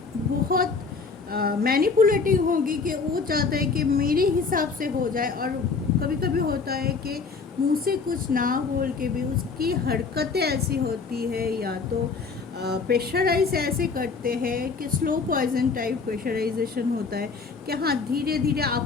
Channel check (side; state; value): right; quieter; 4.8 dB